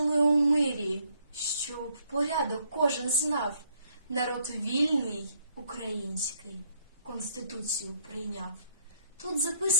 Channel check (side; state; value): both; inverted; correlation -0.68